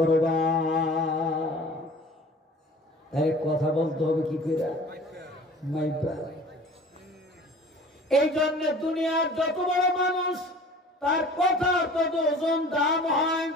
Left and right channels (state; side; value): normal; both; correlation 0.45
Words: তাই কথা বলতে হবে কি করে? মাইবা। এই জন্য দুনিয়ার যত বড় মানুষ তার কথা তত ওজন দাম হয়।